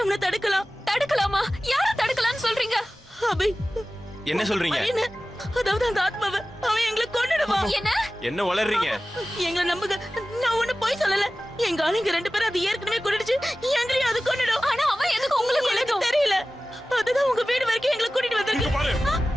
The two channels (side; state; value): both; normal; correlation 0.96